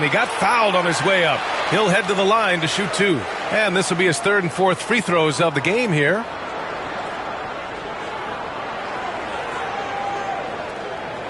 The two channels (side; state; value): both; identical; correlation 1.00